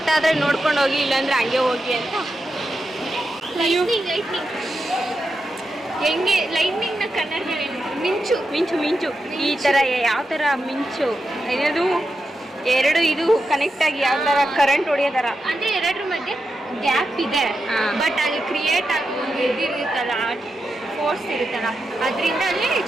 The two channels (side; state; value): both; normal; correlation 0.88